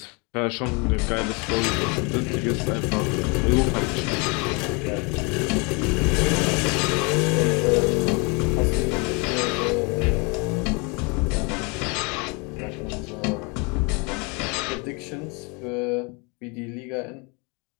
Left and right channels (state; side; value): quieter; right; 30.8 dB